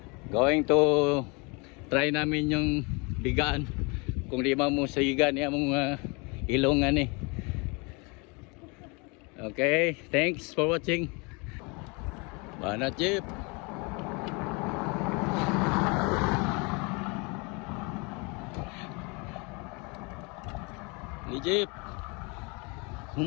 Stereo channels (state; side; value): quieter; right; 29.8 dB